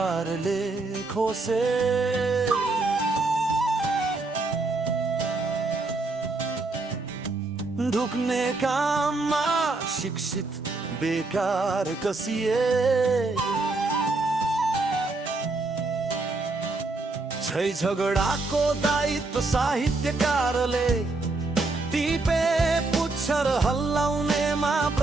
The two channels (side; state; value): left; quieter; 3.4 dB